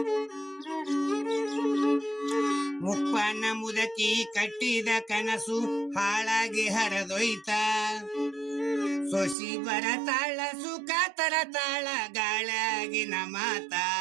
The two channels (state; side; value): drops out; left; at 9.3 s